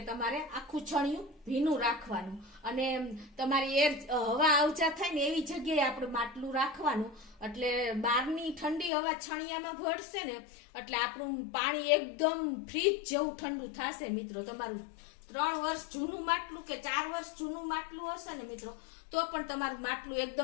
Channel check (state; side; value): drops out; right; at 8.9 s